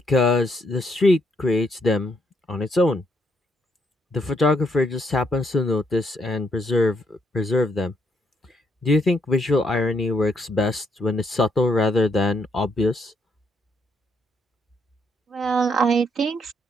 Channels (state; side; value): normal; both; correlation 0.74